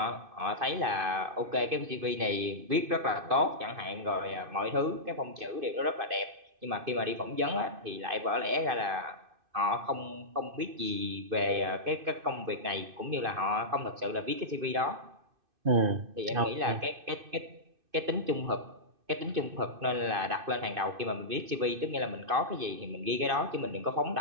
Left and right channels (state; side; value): late; left; 2.5 ms